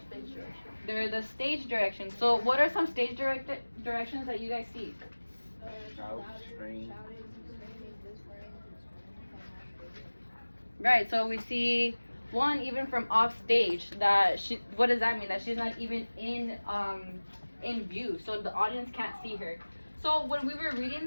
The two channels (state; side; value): inverted; both; correlation -1.00